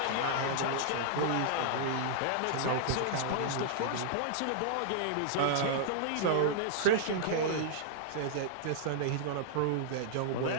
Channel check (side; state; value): both; different; correlation -0.01